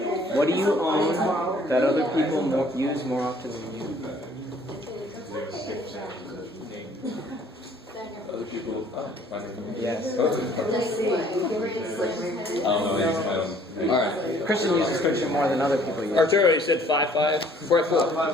What do you own that other people use more often than you? Other people. Yes. All right. Christian uses friction more than other people use. Arturo, you said 5-5?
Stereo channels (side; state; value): both; normal; correlation 0.58